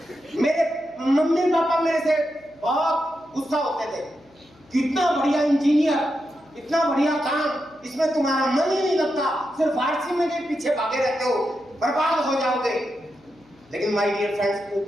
मेरे मम्मी पापा मेरे से बहुत गुस्सा होते थे, कितना बढ़िया इंजीनियर, इतना बढ़िया काम, इसमें तुम्हारा मन ही नहीं लगता, सिर्फ आरसिम में के पीछे भागे रहते हो, बर्बाद हो जाओगे। लेकिन माय डियर फ्रेंड्स,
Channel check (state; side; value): noise; left; hum, 30 dB below the sound